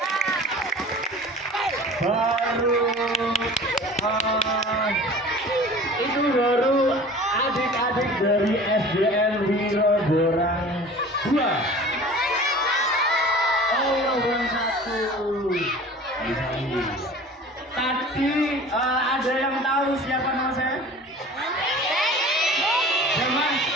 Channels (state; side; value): normal; both; correlation 0.42